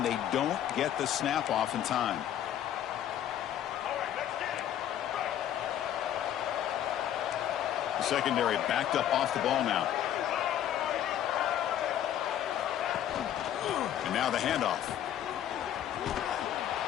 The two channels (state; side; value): quieter; right; 10.9 dB